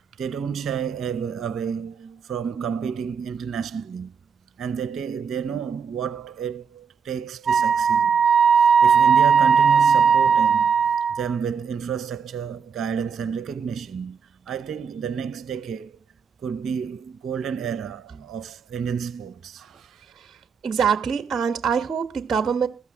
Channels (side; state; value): left; quieter; 6.3 dB